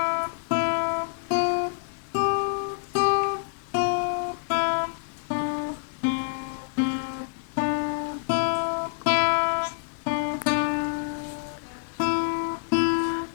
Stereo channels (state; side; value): silent; right; digital silence